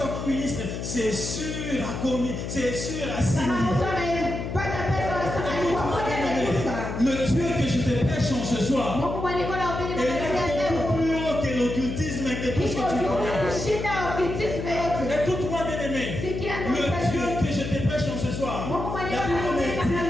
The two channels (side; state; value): left; noise; hum, 5 dB below the sound